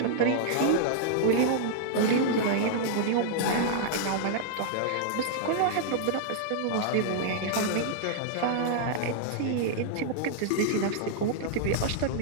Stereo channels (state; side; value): different; both; correlation -0.01